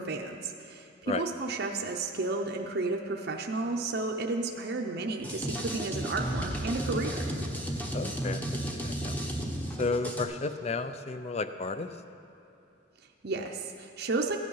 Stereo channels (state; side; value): normal; both; correlation 0.37